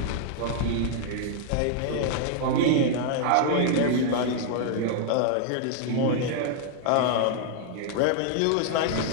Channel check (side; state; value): both; different; correlation -0.01